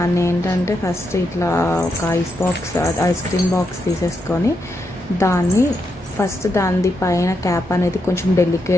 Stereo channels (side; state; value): both; normal; correlation 0.82